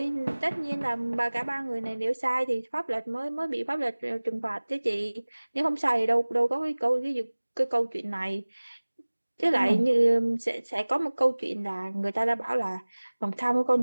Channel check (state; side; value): inverted; both; correlation -1.00